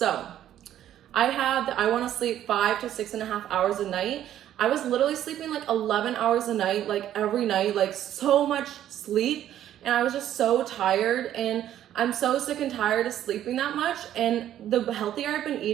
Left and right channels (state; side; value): quieter; left; 11.6 dB